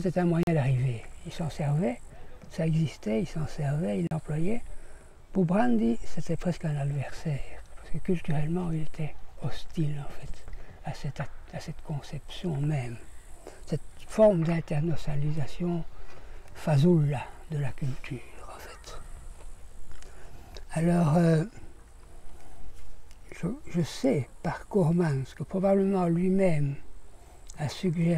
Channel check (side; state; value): both; identical; correlation 1.00